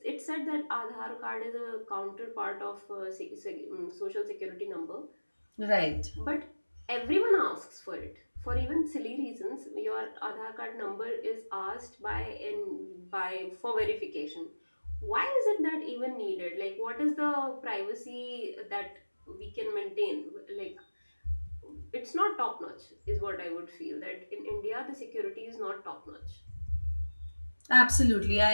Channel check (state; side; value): inverted; both; correlation -1.00